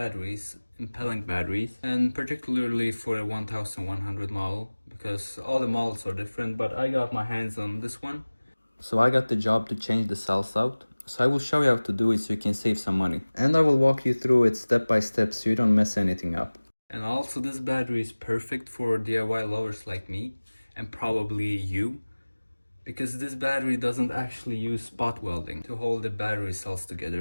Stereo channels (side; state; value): both; inverted; correlation -1.00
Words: in pellenc batteries, and particularly for a 1100 model, because all the models are different, but I got my hands on this one. So I got the job to change the cells out. So I will show you how to do it so you can save some money. And I will walk you through it step by step so you don't mess anything up. And also, this battery is perfect for DIY lovers like me, and probably you, because this battery doesn't actually use spot welding to hold the battery cells